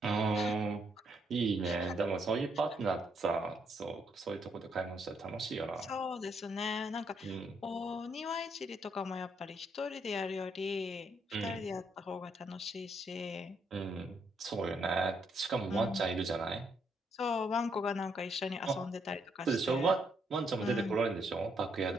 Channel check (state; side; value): normal; both; correlation 0.74